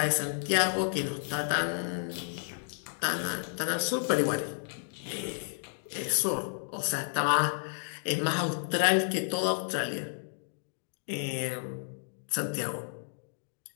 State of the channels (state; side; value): silent; right; digital silence